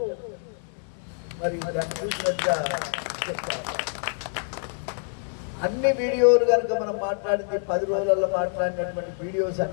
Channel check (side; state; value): right; silent; 61 dB below the other